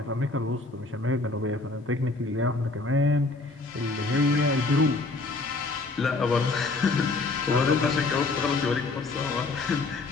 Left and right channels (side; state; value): right; quieter; 3.4 dB